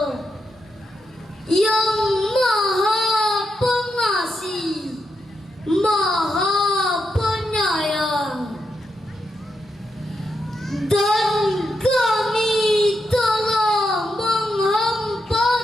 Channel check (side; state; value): both; normal; correlation 0.83